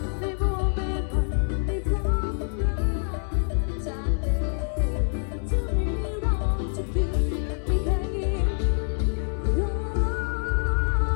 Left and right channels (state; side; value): silent; right; 61 dB below the other